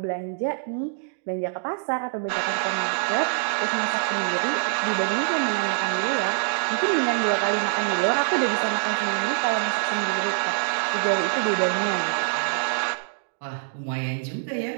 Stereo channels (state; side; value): silent; left; digital silence